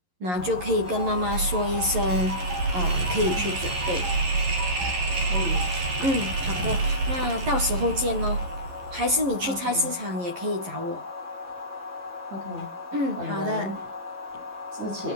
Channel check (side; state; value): left; late; 11 ms